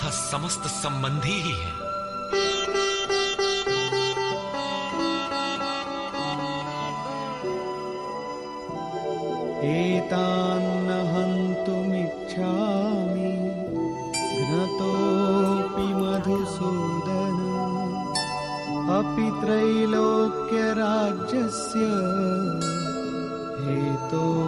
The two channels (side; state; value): both; identical; correlation 1.00